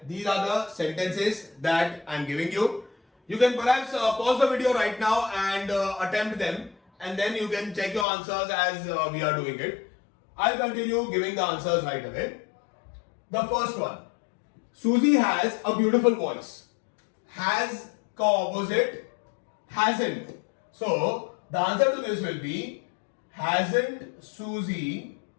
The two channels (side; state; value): right; drops out; at 8.1 s